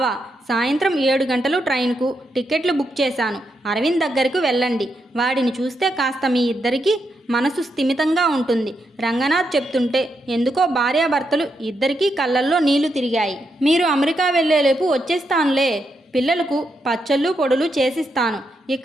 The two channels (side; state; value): both; normal; correlation 0.82